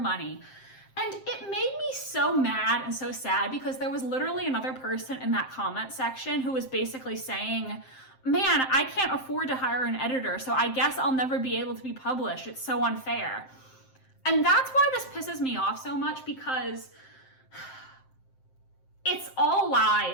And it made me so mad and so sad because there was literally another person in that comment section who was basically saying, man, I can't afford to hire an editor, so I guess I'll never be able to be published. It's so unfair. And that's why this pisses me off so much, because it's all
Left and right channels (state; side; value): late; right; 7.6 ms